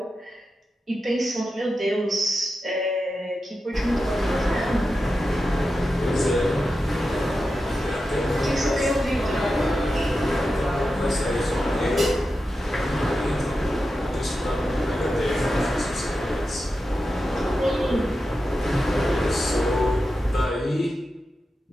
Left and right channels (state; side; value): normal; both; correlation 0.91